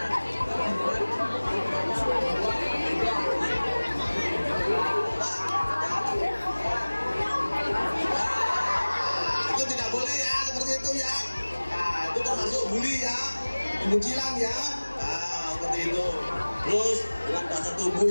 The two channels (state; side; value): inverted; both; correlation -1.00